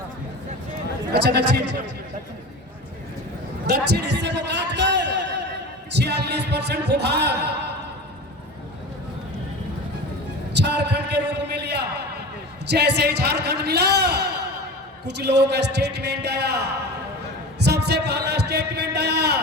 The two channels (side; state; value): both; normal; correlation 0.33